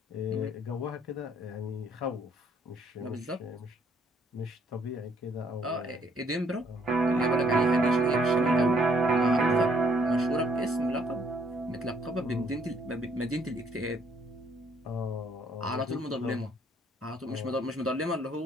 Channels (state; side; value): normal; both; correlation 0.65